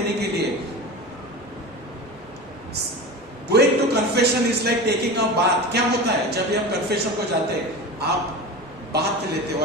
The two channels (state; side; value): normal; both; correlation 0.30